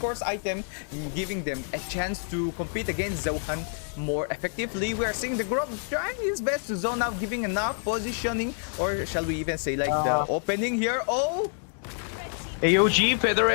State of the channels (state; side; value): silent; right; 60 dB below the other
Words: item, giving them a chance to compete against Zohan more effectively. We are seeing the Grok trying his best to zone out, giving enough positioning, or shall we even say like the opening here. AOG, Feather